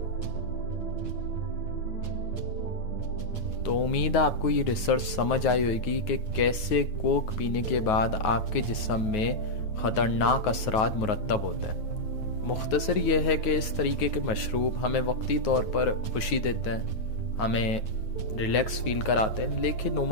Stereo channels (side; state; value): right; late; 9.4 ms